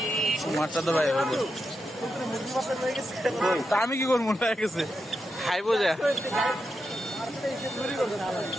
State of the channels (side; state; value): both; normal; correlation 0.87